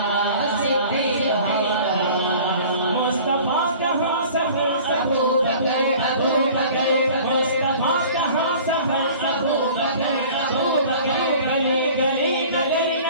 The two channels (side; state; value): both; inverted; correlation -0.46